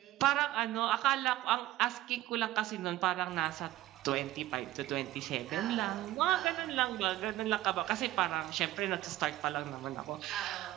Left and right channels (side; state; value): left; quieter; 15.4 dB